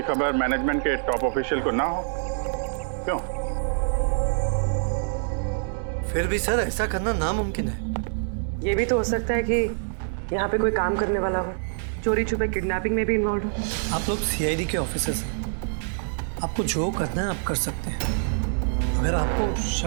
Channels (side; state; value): left; silent; digital silence